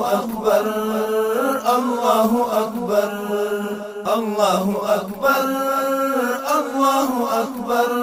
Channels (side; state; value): both; identical; correlation 1.00